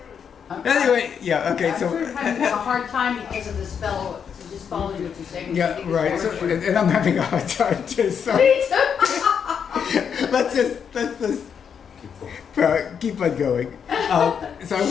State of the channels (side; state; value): right; quieter; 7.3 dB